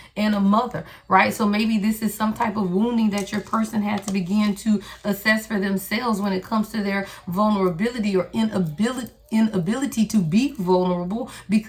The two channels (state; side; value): identical; both; correlation 1.00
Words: and a mother, right? So maybe this is some type of wounding that your person had to begin to assess for themselves when it comes to their vulnerability or inability to be vulnerable